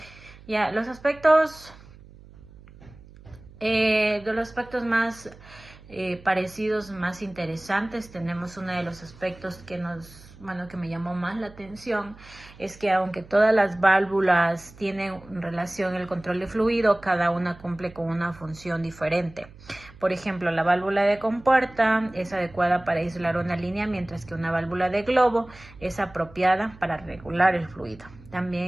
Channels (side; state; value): right; noise; hum, 21 dB below the sound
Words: Ya, los aspectos más parecidos, más interesantes, tenemos uno de los aspectos que que me llamó más la atención, es que aunque todas las válvulas tienen relación el control de fluido, cada una cumple con una función diferente. Por ejemplo, la válvula de compuerta es adecuada para aislar una línea, mientras que una válvula de globo es apropiada para regular el fluido.